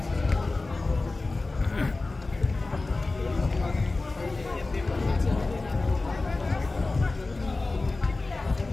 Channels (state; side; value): quieter; right; 3.3 dB